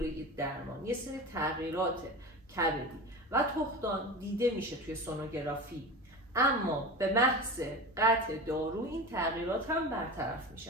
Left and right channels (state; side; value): normal; both; correlation 0.29